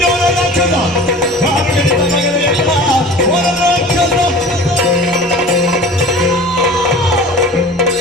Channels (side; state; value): both; normal; correlation 0.40